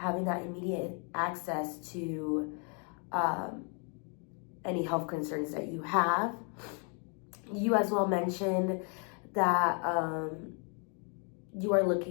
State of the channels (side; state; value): right; quieter; 39.4 dB